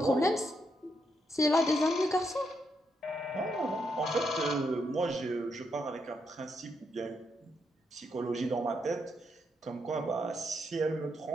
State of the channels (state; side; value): normal; both; correlation 0.79